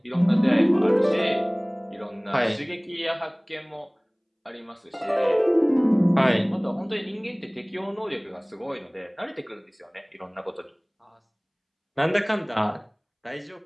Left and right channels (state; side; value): identical; both; correlation 1.00